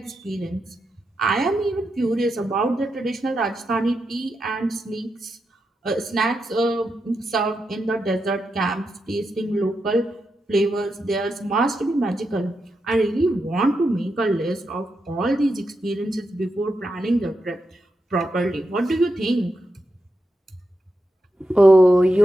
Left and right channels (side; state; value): both; normal; correlation 0.86